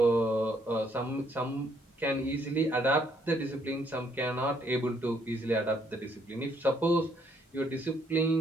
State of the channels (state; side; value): normal; both; correlation 0.69